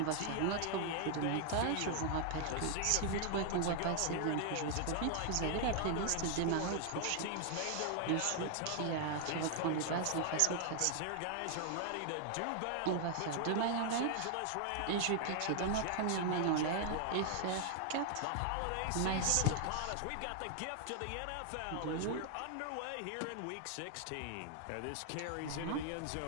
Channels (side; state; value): both; different; correlation 0.00